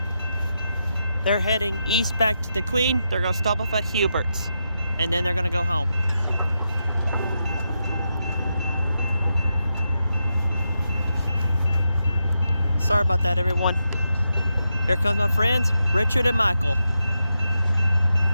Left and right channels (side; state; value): both; inverted; correlation -0.86